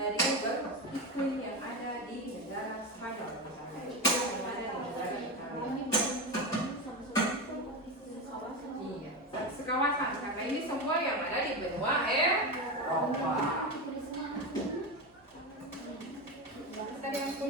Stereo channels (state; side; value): normal; both; correlation 0.17